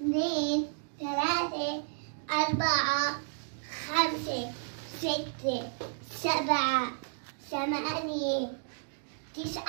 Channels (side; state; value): left; silent; digital silence